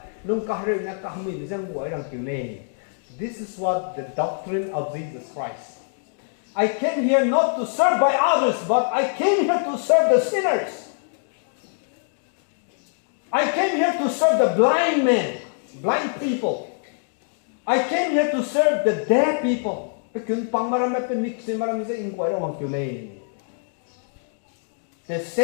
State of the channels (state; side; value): silent; right; digital silence